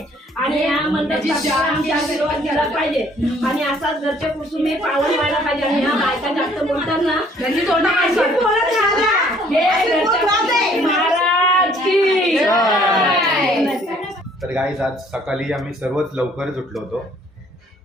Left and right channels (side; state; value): both; normal; correlation 0.60